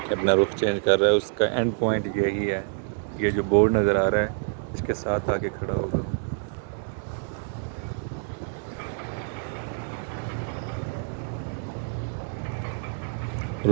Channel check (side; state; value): left; silent; 60 dB below the other